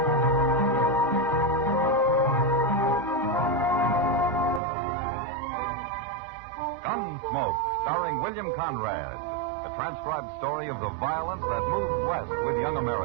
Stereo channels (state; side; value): drops out; left; at 4.6 s